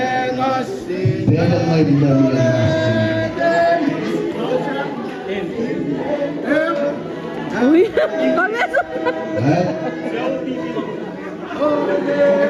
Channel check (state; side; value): identical; both; correlation 1.00